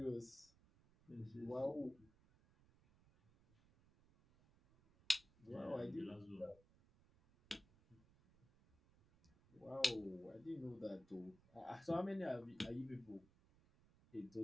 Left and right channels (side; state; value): right; noise; rumble, 27 dB below the sound